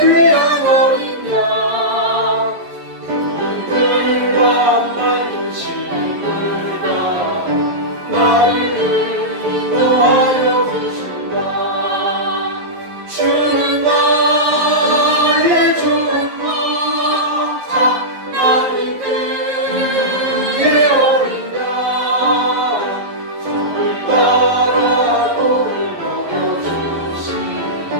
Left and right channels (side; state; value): left; late; 11 ms